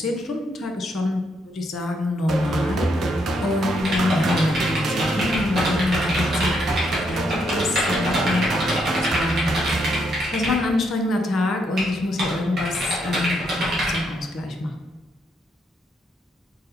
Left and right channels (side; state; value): both; normal; correlation 0.76